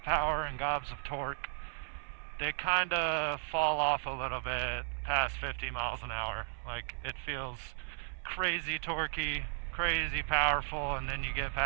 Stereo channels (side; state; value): left; silent; 54 dB below the other